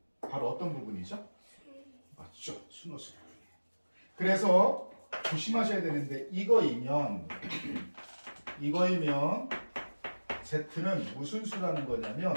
바로 어떤 부분이죠? 맞죠? 순호수 부분이에요. 그래서 조심하셔야 되는데 이거이면 Z는 무슨 수라는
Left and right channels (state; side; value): inverted; both; correlation -1.00